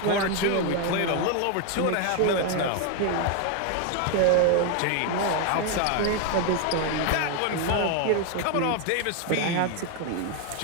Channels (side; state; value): both; different; correlation 0.01